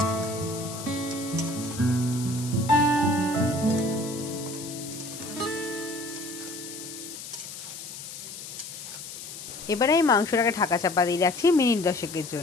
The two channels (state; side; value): noise; left; hiss, 11 dB below the sound